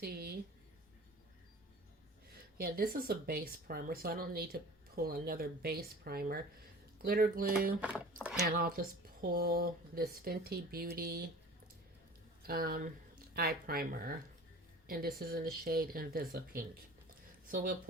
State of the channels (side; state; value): both; normal; correlation 0.42